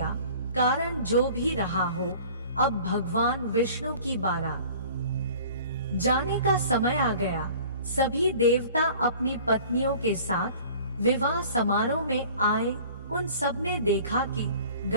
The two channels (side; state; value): both; inverted; correlation -0.47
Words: कारण जो भी रहा हो, अब भगवान विष्णु की बारात जाने का समय आ गया। सभी देवता अपनी पत्नियों के साथ विवाह समारोह में आए। उन सब ने देखा कि